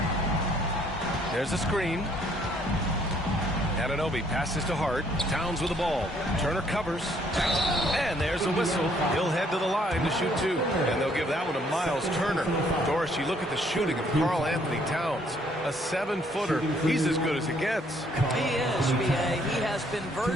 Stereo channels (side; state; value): both; normal; correlation 0.65